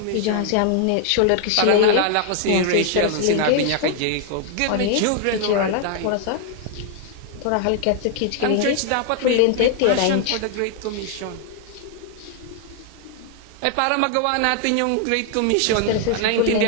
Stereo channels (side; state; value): both; different; correlation 0.00